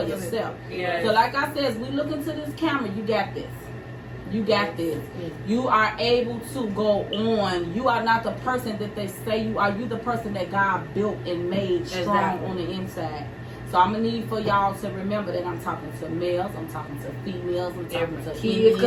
yourself. So like I said, as we look into this camera, you got this. You got this. You are able to go on. You are not the person that they say you are. You the person that God built and made strong on the inside. So I'm gonna need for y'all to remember that I'm talking to males, I'm talking to females, I'm talking to kids,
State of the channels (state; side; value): identical; both; correlation 1.00